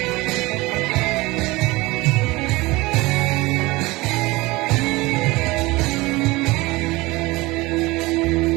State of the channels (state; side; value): quieter; left; 21.7 dB